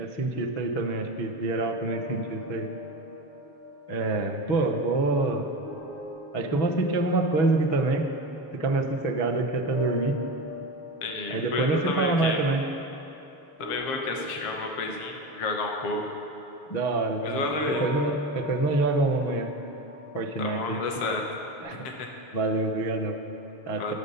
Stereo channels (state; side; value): late; right; 6.9 ms